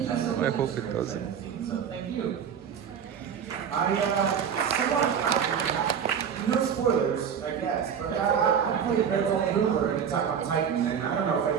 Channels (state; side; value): quieter; left; 7.7 dB